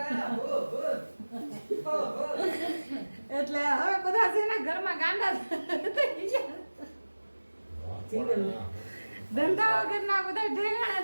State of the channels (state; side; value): inverted; both; correlation -1.00